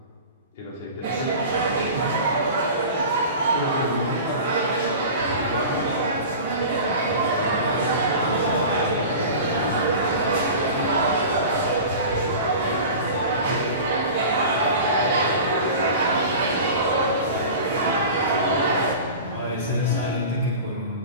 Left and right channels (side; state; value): both; inverted; correlation -0.35